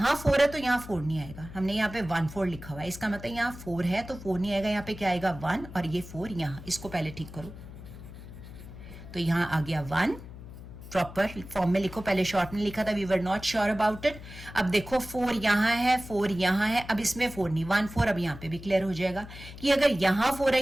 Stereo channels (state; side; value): noise; left; hum, 14 dB below the sound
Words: 4 है तो यहाँ 4 नहीं आएगा। हमने यहाँ पे 1 4 लिखा हुआ है, इसका मतलब यहाँ 4 है तो 4 नहीं आएगा। यहाँ पे क्या आएगा? 1, और ये 4 यहाँ, इसको पहले ठीक करो। तो यहाँ आ गया 1, प्रॉपर फॉर्म में लिखो, पहले शॉर्ट में लिखा था, we were not sure about it. अब देखो 4 यहाँ है, 4 यहाँ है, अब इसमें 4 नहीं, 1 4 अब यहाँ पे भी क्लियर हो जाएगा कि अगर यहाँ 4 है,